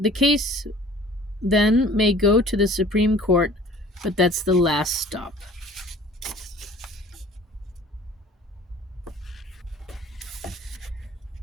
may go to the Supreme Court, but that's the last stop.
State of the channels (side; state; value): both; normal; correlation 0.49